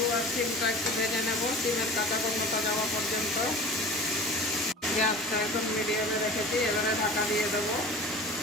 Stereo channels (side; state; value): both; normal; correlation 0.38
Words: আর শিমটা একটু ভেজে নেব, শিমের কাঁচা গন্ধটা যাওয়া পর্যন্ত। গ্যাসটা এখন মিডিয়ামে রেখেছি। এবারে ঢাকা দিয়ে দেবো।